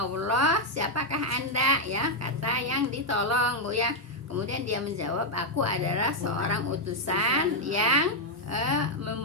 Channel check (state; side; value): normal; both; correlation -0.01